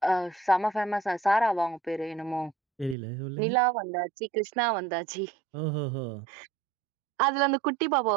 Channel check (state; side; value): drops out; left; at 3.0 s